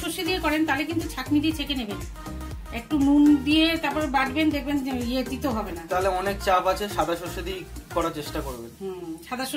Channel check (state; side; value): identical; both; correlation 1.00